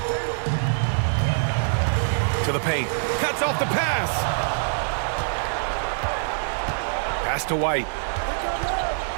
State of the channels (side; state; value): left; silent; digital silence